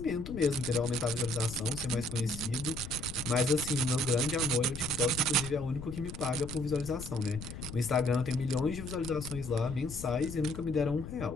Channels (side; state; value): left; noise; rumble, 10 dB below the sound